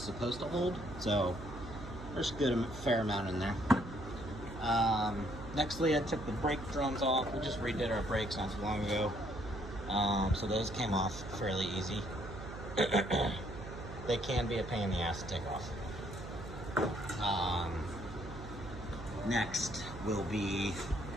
supposed to hold. So there's a fair amount in there. Nextly, I took the brake drums off. We just redid our brakes not too long ago. So those came off fairly easy. They can be a pain in the ass to take off. Next will be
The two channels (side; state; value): right; noise; hum, 11 dB below the sound